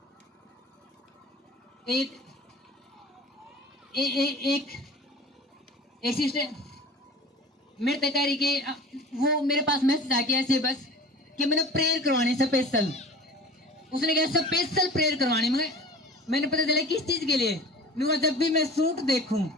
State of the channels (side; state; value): both; normal; correlation 0.40